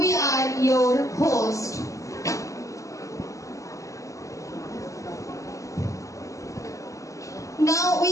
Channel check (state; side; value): late; right; 0.16 ms